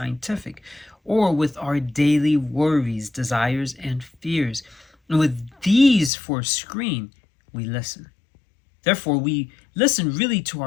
or with our daily worries, desires, and fears. And with these for a screen, we listen. Therefore, we listen really to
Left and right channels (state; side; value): drops out; right; at 6.1 s